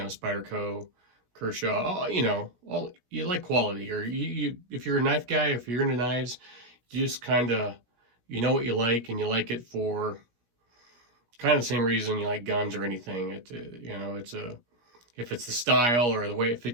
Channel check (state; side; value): late; left; 17 ms